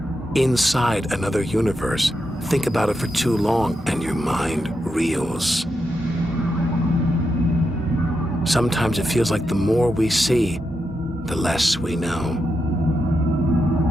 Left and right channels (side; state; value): both; normal; correlation 0.85